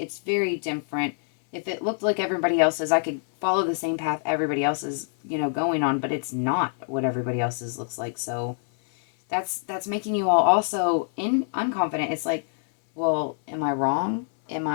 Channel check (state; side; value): silent; right; 57 dB below the other